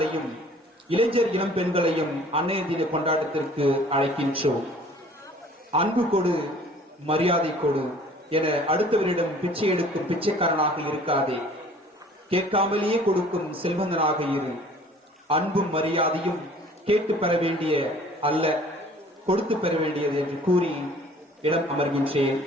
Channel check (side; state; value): both; normal; correlation 0.51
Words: இளைஞர் இளம் பெண்களையும் அன்னையர் தின கொண்டாட்டத்திற்கு அழைக்கின்றோம். அன்பு கொடு, மரியாதை கொடு என அடுத்தவரிடம் பிச்சை எடுக்கும் பிச்சைக்காரனாக இருக்காதே, கேட்காமலேயே கொடுக்கும் செல்வந்தனாக இரு. அன்பும் மரியாதையும் கேட்டு பெற வேண்டிய அல்ல, கொடுத்து பெற வேண்டியது என்று கூறி இடம் அமர்கின்றேன்.